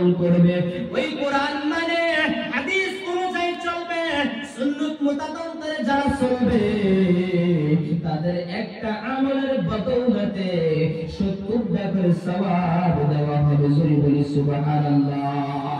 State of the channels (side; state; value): both; identical; correlation 1.00